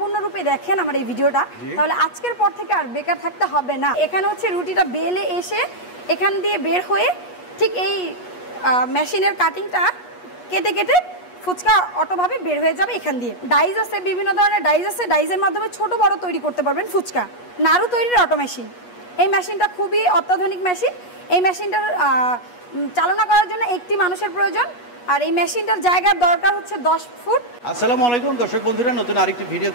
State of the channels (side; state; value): right; late; 8.3 ms